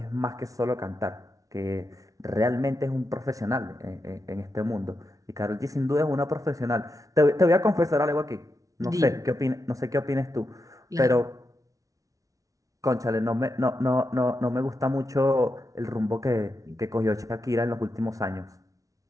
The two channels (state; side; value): late; left; 0.17 ms